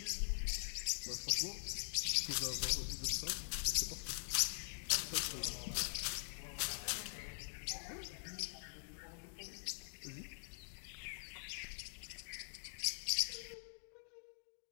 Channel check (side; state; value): right; silent; digital silence